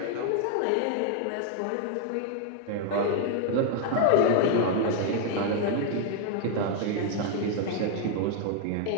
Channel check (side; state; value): both; different; correlation 0.00